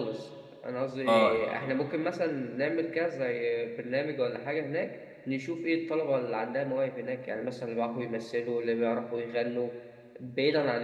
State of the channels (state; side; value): identical; both; correlation 1.00